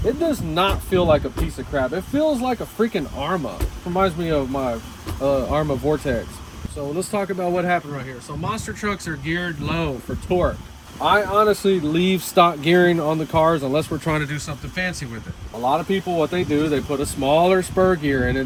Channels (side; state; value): both; identical; correlation 1.00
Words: it does not feel like a piece of crap. It feels like a freaking Arma. Reminds me of my Arma Vortex. So let's talk about what happened right here. So monster trucks are geared low for torque. I honestly leave stock gearing on the cars unless we're trying to do something fancy with it. A lot of people, what they do, they put a smaller spur gear in it